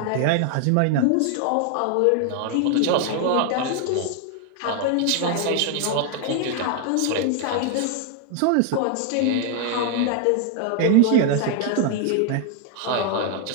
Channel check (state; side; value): different; both; correlation 0.00